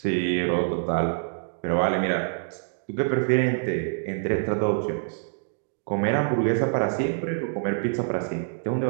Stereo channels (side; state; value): left; silent; digital silence